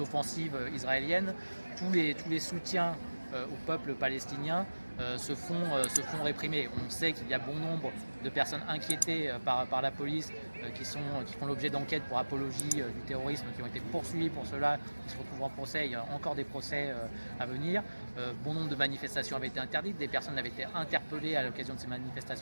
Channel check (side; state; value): both; inverted; correlation -1.00